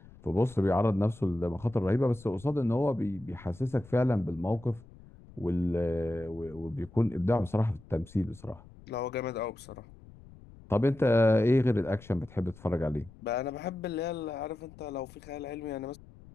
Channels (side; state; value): left; noise; rumble, 21 dB below the sound